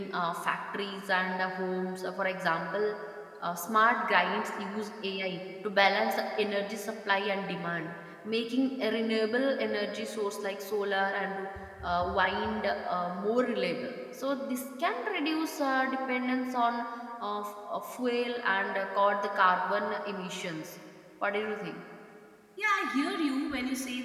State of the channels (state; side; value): identical; both; correlation 1.00